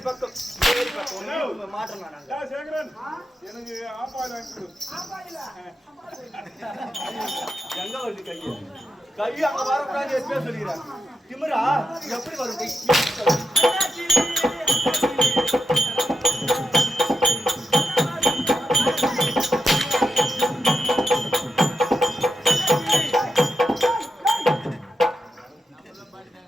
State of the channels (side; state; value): both; normal; correlation 0.86